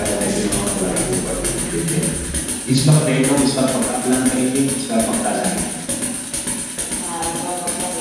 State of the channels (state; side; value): identical; both; correlation 1.00